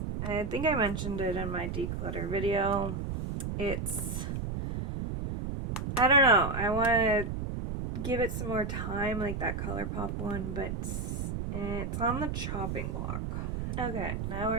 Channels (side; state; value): right; noise; rumble, 3 dB below the sound